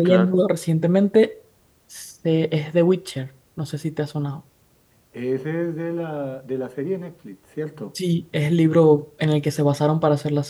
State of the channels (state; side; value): identical; both; correlation 1.00